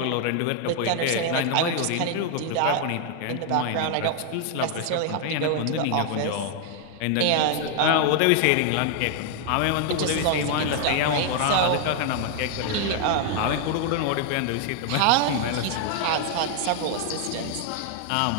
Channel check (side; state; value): both; different; correlation 0.00